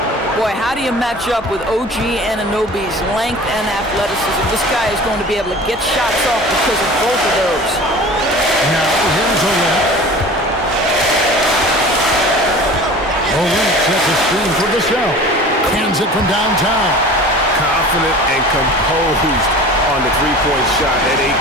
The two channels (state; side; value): normal; both; correlation 0.41